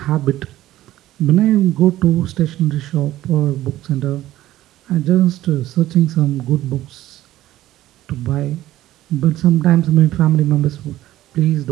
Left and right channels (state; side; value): quieter; left; 14.7 dB